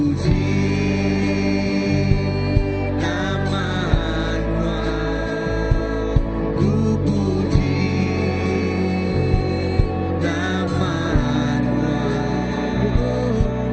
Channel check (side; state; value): both; identical; correlation 1.00